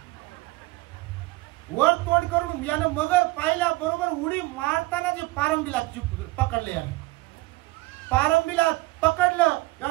वर तोंड करून यानं मगर पाहिल्या बरोबर उडी मारताना जे पारंबीला पकडले, यानं पारंबीला पकडलं,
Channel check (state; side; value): quieter; left; 21.1 dB